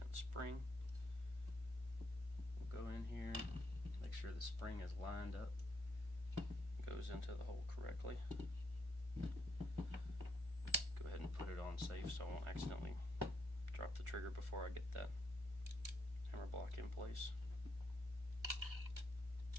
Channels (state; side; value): late; left; 1.4 ms